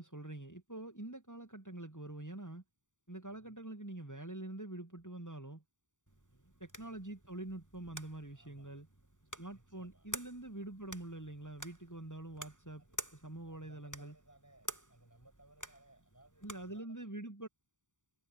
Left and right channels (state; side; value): late; right; 0.86 ms